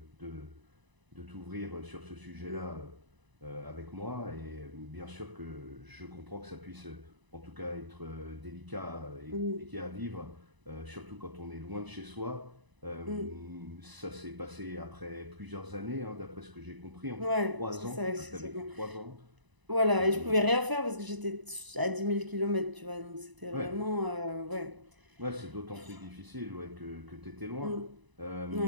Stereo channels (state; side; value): late; left; 1.0 ms